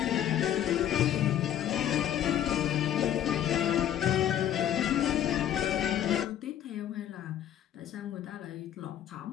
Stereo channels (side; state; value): right; quieter; 10.8 dB